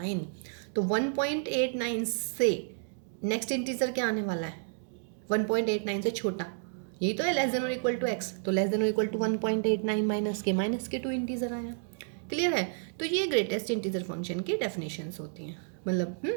तो 1.89 से नेक्स्ट इंटीजर क्या आने वाला है, 1.89 से छोटा, यही तो है लेस देन और इक्वल टू x, तो लेस देन और इक्वल टू 1.89 माइनस के 2 इंटीजर आया, क्लियर है। तो ये ग्रेटेस्ट इंटीजर फंक्शन की डेफिनेशंस होती हैं, मतलब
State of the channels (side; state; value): left; silent; digital silence